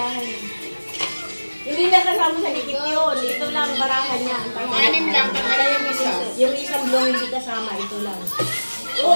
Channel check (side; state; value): both; inverted; correlation -1.00